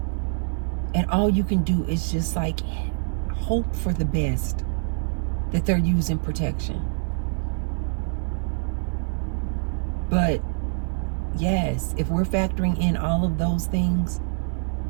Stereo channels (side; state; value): left; silent; 56 dB below the other